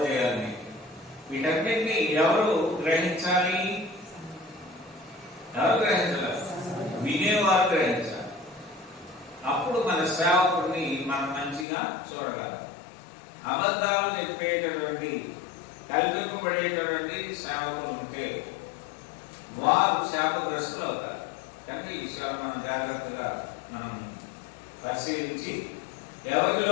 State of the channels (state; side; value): drops out; right; at 11.7 s